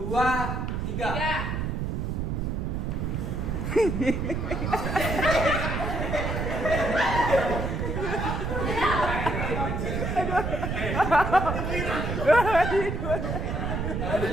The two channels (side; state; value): right; noise; rumble, 1 dB below the sound